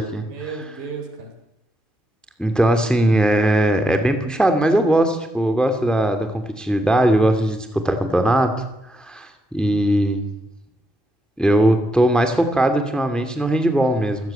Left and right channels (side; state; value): both; normal; correlation 0.82